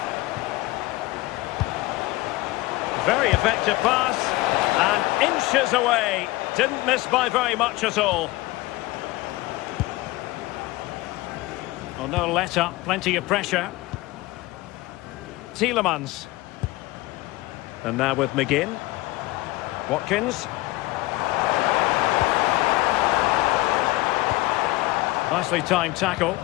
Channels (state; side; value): quieter; right; 19.7 dB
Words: Very effective pass, and inches away. Didn't miss by very much at all. Oh, no let up, plenty of pressure. Tielemans. And now with McGinn. Watkins. Nicely timed tackle.